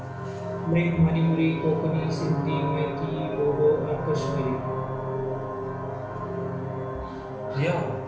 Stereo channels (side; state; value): both; identical; correlation 1.00